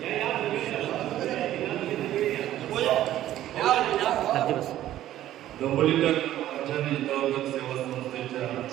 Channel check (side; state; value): left; quieter; 13.1 dB